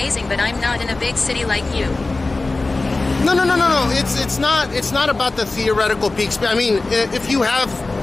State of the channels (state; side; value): quieter; right; 3.3 dB